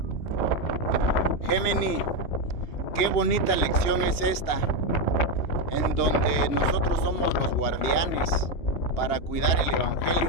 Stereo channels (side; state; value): right; late; 2.9 ms